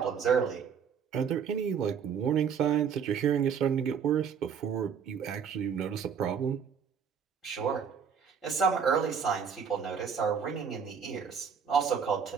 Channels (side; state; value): left; quieter; 7.0 dB